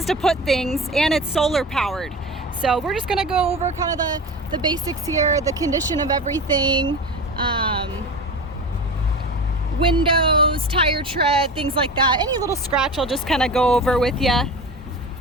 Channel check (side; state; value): both; normal; correlation 0.31